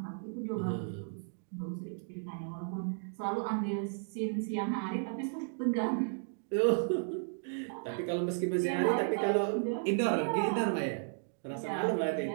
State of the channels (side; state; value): left; silent; digital silence